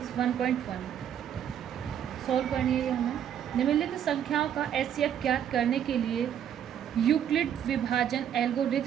1.1 सॉल्व करनी है हमें। निम्नलिखित संख्याओं का एचसीएफ ज्ञात करने के लिए यूक्लिड विभाजन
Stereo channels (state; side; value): quieter; left; 9.5 dB